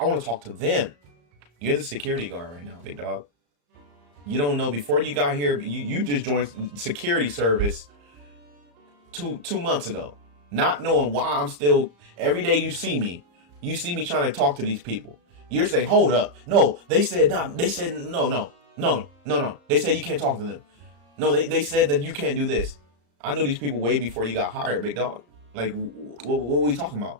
want to talk to them. You're the security guard right now, big dog. You don't know, before you got here, you just joined security service two months ago. Not knowing why I'm still, every day you see me trying to talk to these people. You're saying, hold up. No, they said not. They said no. They said you can't talk to them. No, they said that you can't do this. I knew these people way before you got hired, big dog. Like, what were we talking about?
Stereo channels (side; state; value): left; late; 34 ms